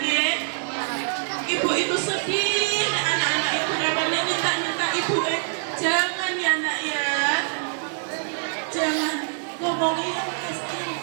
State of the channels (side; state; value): left; silent; digital silence